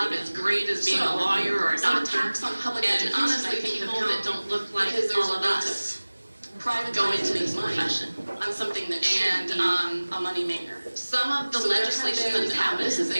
as great as being a lawyer or a some doctor. attacks on public And education, honestly, I think, people have that come don't look like because there's all a of lot us of private go into this this profession. on something that should And, be a moneymaker. Some of the So legislation that's happened, this is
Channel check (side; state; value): both; inverted; correlation -1.00